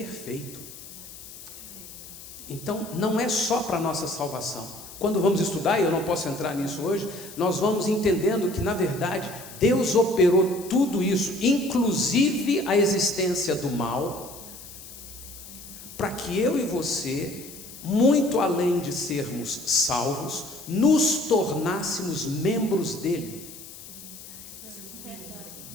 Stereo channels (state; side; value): noise; left; hiss, 15 dB below the sound